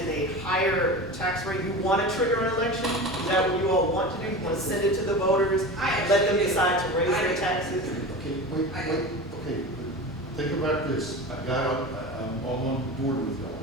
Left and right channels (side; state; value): both; normal; correlation 0.30